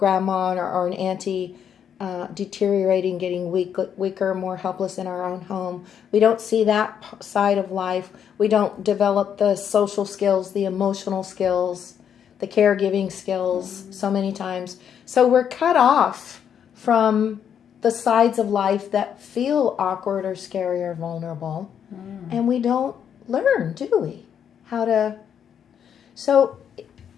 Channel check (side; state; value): right; quieter; 8.4 dB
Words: or an auntie deteriorating, getting weaker, more helpless in our own home. We don't see that side of life. We don't develop the social skills, the emotional skills, the caregiving skills so many times. So we're cut off from the sides of life that feel awkward or scary or vulnerable. And we don't learn, do we? How to... So